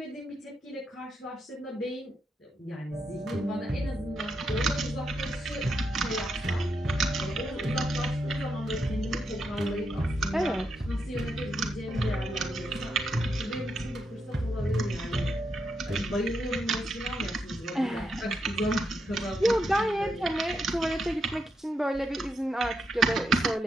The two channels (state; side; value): normal; both; correlation 0.82